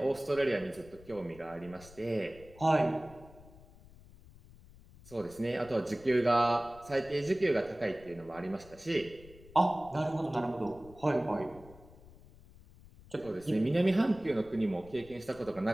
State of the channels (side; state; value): left; noise; rumble, 22 dB below the sound